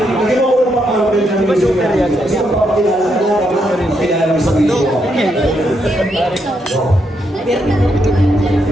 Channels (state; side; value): normal; both; correlation 0.79